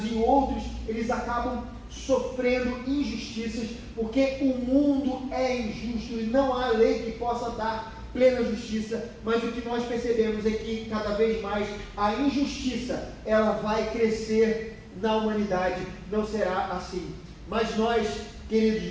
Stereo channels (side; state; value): both; identical; correlation 1.00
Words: e outros eles acabam sofrendo injustiças, porque o mundo é injusto e não há lei que possa dar plena justiça, mas o que nós percebemos é que cada vez mais a injustiça ela vai crescer na humanidade, não será assim. Mas nós,